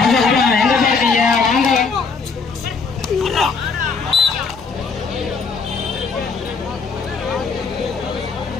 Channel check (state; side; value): quieter; right; 4.9 dB